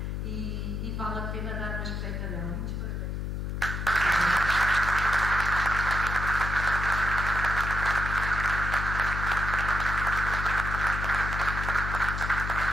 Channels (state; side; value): noise; left; hum, 3 dB below the sound